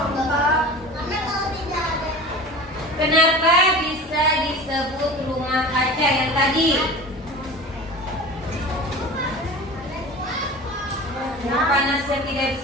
Kenapa bisa disebut rumah kaca yang tadi? Nah, panasnya tidak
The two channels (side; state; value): both; normal; correlation 0.36